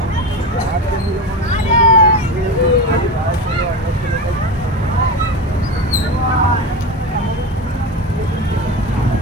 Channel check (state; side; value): normal; both; correlation 0.22